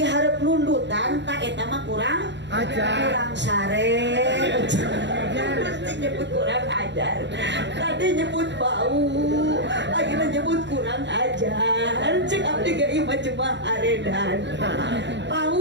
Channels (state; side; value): late; left; 0.52 ms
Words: hareup nundutan tak eta mah kurang ajar kurang sare mesti nyebut kurang ajar tadi nyebut bau lagi nyebut kurang ajar cek abdi ge ieu mah cuma aredan